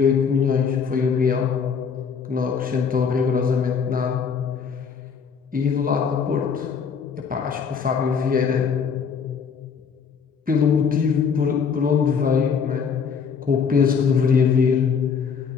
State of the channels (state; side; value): quieter; right; 6.3 dB